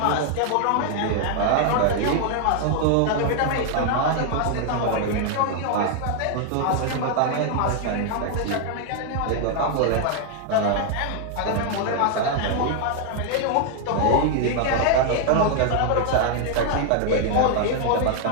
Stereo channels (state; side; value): different; both; correlation 0.00